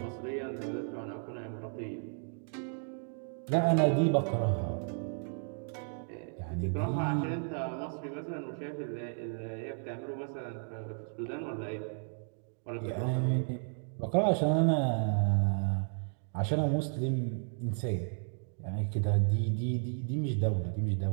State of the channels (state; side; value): silent; left; 55 dB below the other